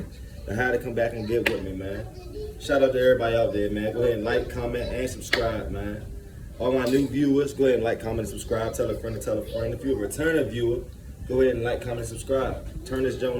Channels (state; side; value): identical; both; correlation 1.00